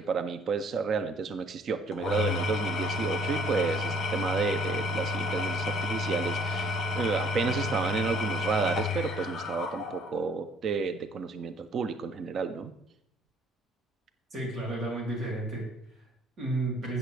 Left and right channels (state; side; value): normal; both; correlation 0.59